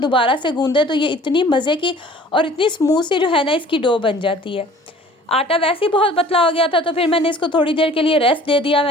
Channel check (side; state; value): both; normal; correlation 0.49